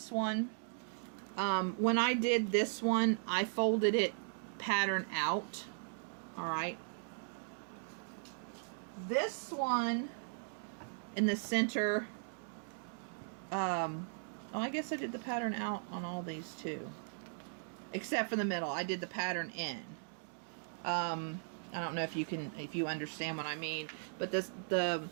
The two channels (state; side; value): silent; left; digital silence